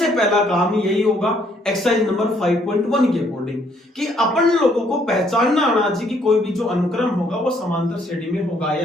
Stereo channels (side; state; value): both; normal; correlation 0.67